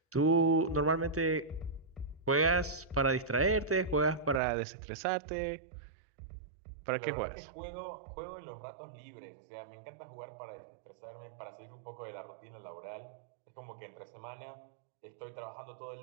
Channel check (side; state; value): left; drops out; at 4.4 s